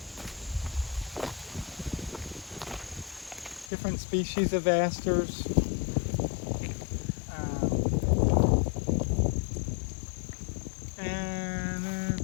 different species of asters.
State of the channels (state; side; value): drops out; right; at 3.7 s